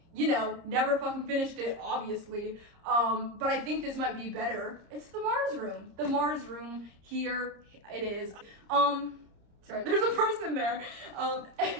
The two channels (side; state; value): left; late; 30 ms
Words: you know, never fucking finished it, obviously. But I think this might be better. It's The Mars Room. The Mars Room, here it is. Sorry, there's a person there.